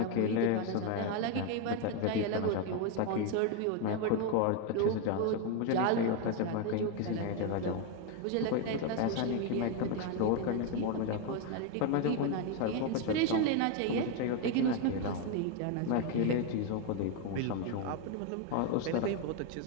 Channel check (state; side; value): different; both; correlation 0.02